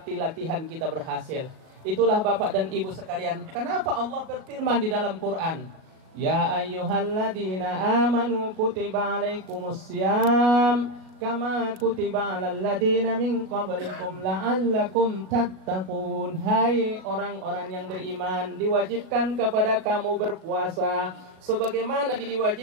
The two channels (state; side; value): late; left; 38 ms